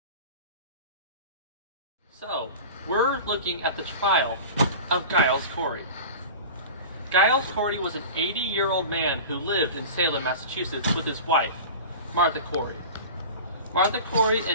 So, we're looking at the trial of Giles Corey. Giles Corey was an 80-year-old man who lived in Salem, Massachusetts with his wife, Martha Corey. Martha Corey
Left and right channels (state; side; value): inverted; both; correlation -0.34